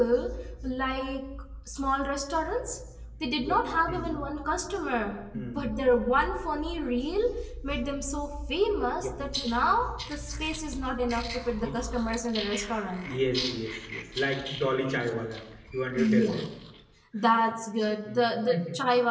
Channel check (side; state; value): both; identical; correlation 1.00